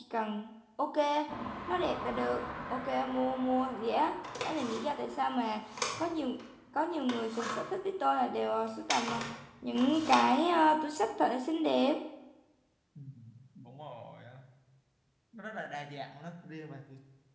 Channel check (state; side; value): identical; both; correlation 1.00